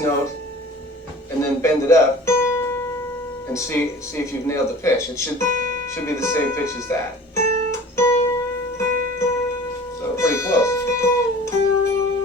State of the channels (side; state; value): both; normal; correlation 0.43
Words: and then bend it up and see if you've nailed the pitch. It should be the same pitch as that. So pretty close.